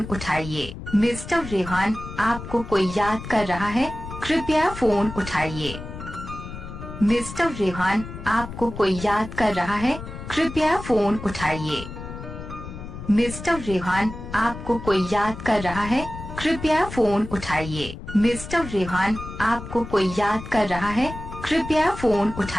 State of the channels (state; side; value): noise; left; rumble, 11 dB below the sound